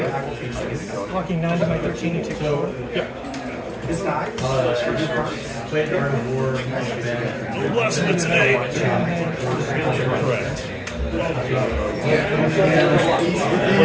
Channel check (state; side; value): identical; both; correlation 1.00